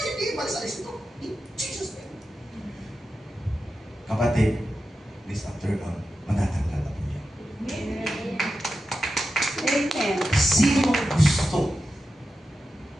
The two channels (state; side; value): normal; both; correlation 0.91